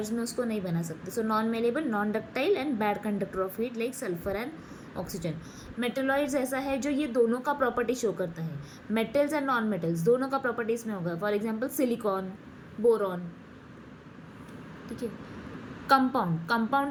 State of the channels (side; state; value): both; identical; correlation 1.00